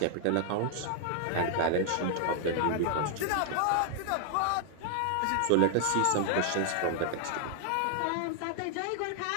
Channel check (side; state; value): both; different; correlation 0.00